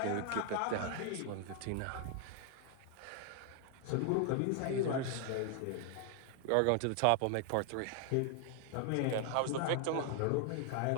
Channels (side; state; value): both; different; correlation 0.00